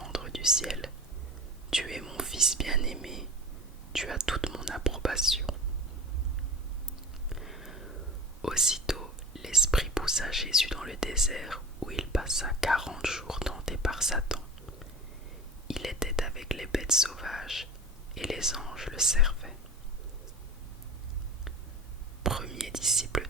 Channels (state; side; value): normal; both; correlation 0.35